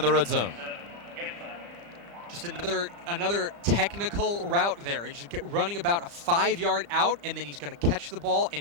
the red zone. Just another technical route there. He's running about a 5-yard out, and then he's going to catch the ball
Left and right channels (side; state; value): left; late; 35 ms